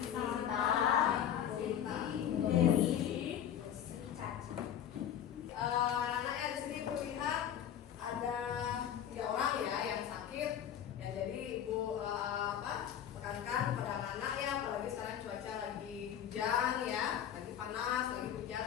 Sinta. Dewi, Caca. Anak-anaknya di sini Ibu lihat ada 3 orang ya yang sakit. Ya jadi Ibu tekankan pada anak-anak ya, apalagi sekarang cuaca lagi hujan ya, lagi panas, lagi hujan,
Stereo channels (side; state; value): right; quieter; 9.7 dB